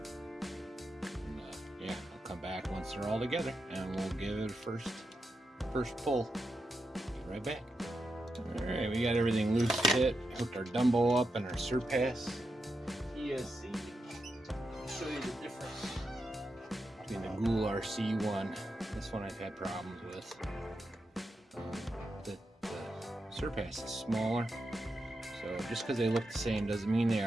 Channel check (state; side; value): normal; both; correlation 0.87